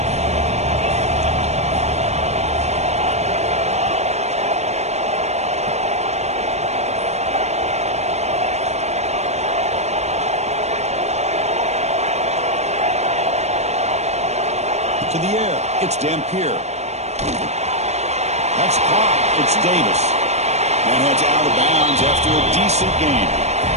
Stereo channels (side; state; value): left; late; 0.32 ms